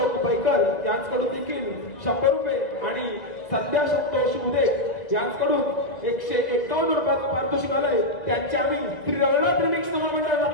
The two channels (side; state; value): right; late; 1.9 ms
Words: बैकर यांच्याकडून देखील 100 रुपये आणि संध्या संतोष उदे यांच्याकडून 151 रुपयाचं पारितोषिक आलंय. त्यांचे आम्ही श्री रविनाथ रिमिक्स महामंडळ